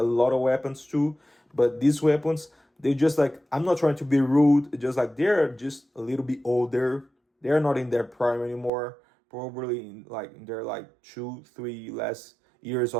lot of weapons too. But these weapons, they just like, I'm not trying to be rude, just like they're just a little bit older. They're not in their prime anymore. Probably in their like 2, 3 last years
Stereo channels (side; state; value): left; drops out; at 8.7 s